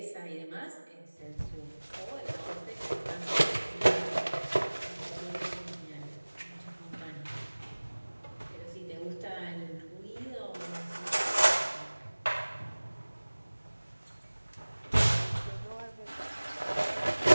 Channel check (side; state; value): both; inverted; correlation -1.00